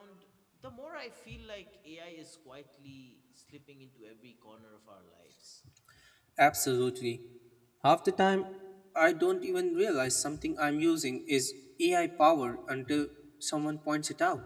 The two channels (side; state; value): both; identical; correlation 1.00